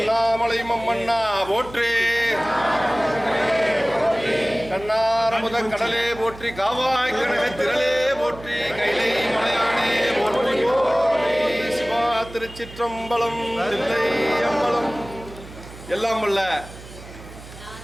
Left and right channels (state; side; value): noise; right; hum, 17 dB below the sound